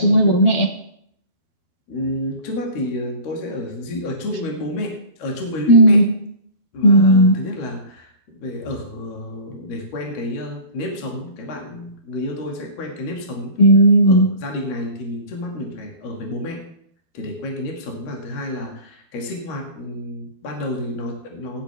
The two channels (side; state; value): right; late; 13 ms